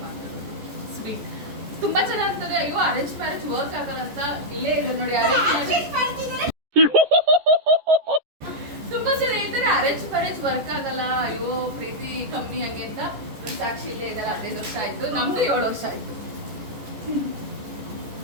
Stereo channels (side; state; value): left; late; 14 ms